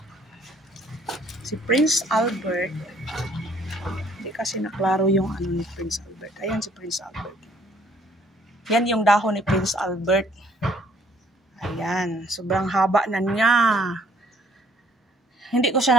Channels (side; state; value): both; normal; correlation 0.62